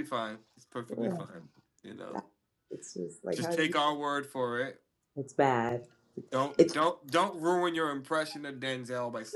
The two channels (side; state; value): both; identical; correlation 1.00